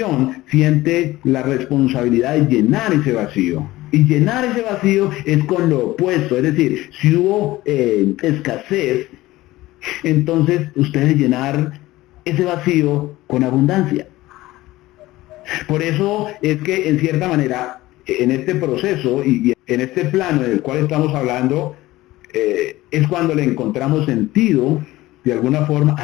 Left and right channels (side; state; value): right; quieter; 17.7 dB